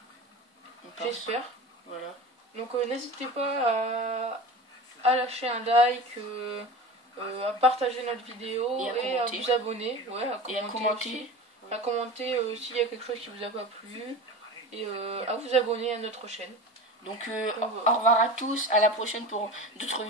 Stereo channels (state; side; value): normal; both; correlation 0.32